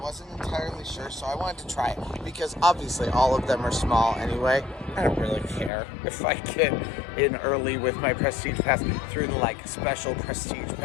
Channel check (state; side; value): drops out; right; at 5.7 s